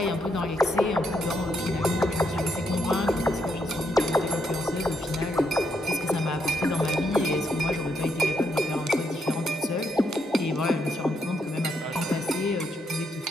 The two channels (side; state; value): both; normal; correlation 0.78